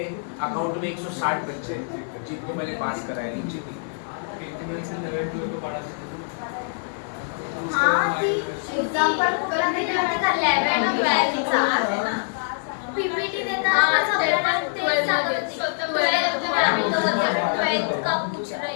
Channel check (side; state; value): right; silent; 57 dB below the other